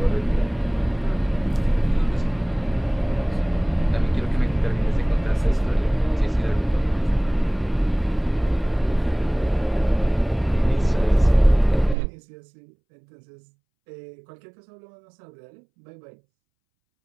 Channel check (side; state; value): left; drops out; at 12.0 s